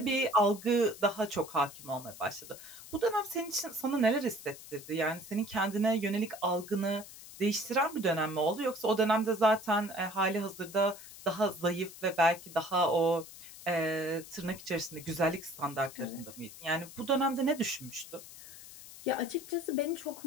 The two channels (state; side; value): noise; left; hiss, 16 dB below the sound